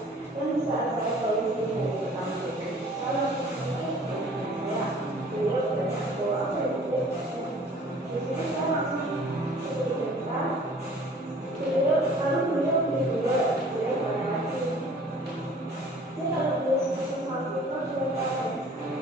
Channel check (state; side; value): normal; both; correlation 0.50